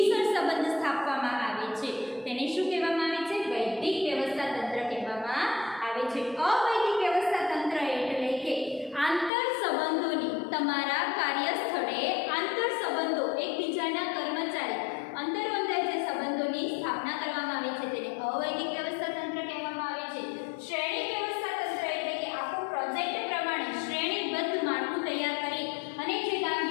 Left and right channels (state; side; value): drops out; right; at 9.3 s